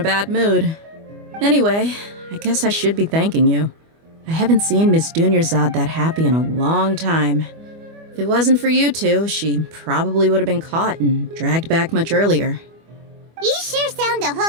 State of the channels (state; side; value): late; left; 25 ms